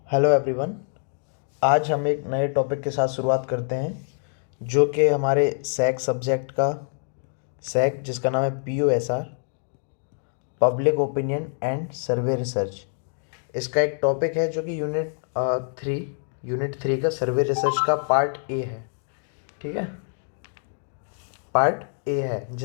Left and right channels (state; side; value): silent; right; 62 dB below the other